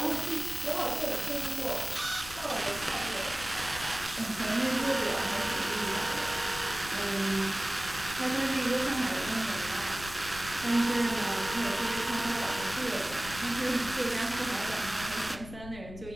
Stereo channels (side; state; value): left; noise; rumble, 14 dB below the sound